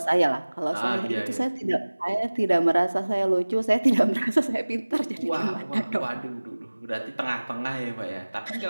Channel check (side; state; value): both; inverted; correlation -1.00